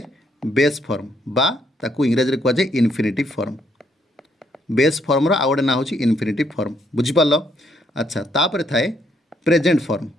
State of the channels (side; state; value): both; normal; correlation 0.72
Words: बेस फॉर्म बा ताकू इंग्राजी कह जाए इनफिनिटिव फॉर्म बेस फॉर्मर आउ गोटे ना हूँ इनफिनिटिव फॉर्म बुझीपार अच्छा तापर थाए प्रेजेंट फॉर्म